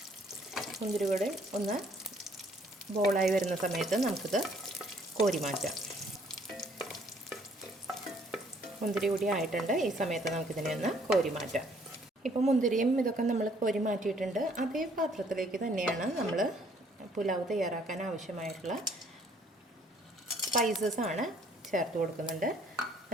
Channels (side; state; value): both; normal; correlation 0.63